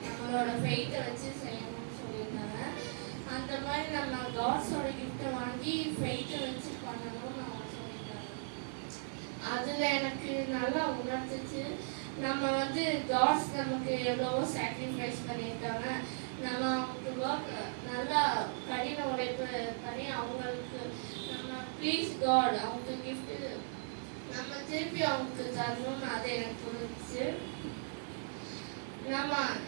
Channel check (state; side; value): silent; left; 53 dB below the other